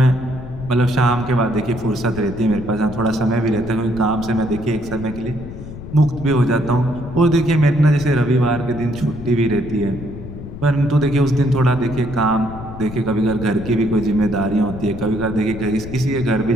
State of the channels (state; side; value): noise; left; rumble, 12 dB below the sound